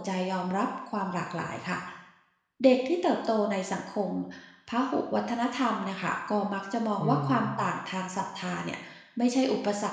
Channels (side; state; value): both; identical; correlation 1.00